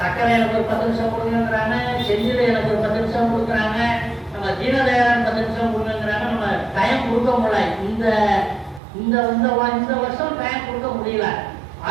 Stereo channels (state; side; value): drops out; left; at 8.8 s